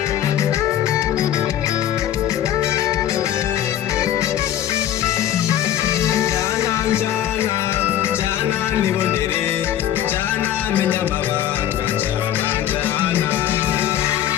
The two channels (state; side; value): quieter; right; 11.4 dB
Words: menya amabanga njana njana